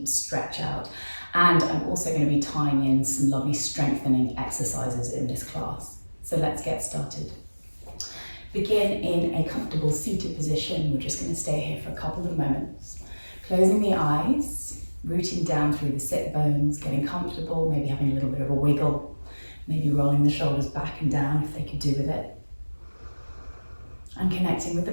stretch out. And I'm also going to be tying in some lovely strengthening exercises in this class. So let's get started. Begin in a comfortable seated position. We're just going to stay here for a couple of moments. Closing the eyes, rooting down through the sit bones, getting comfortable, maybe having a little bit of a wiggle, maybe rolling the shoulders back and down if they could do with it. And connecting with the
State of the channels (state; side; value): inverted; both; correlation -1.00